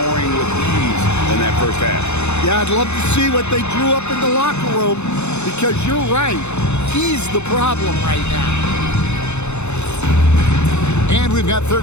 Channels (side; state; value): right; late; 0.82 ms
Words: with ease in that first half. Yeah, I'd love to see what they drew up in the locker room, because you're right. He's the problem right now. And we've got third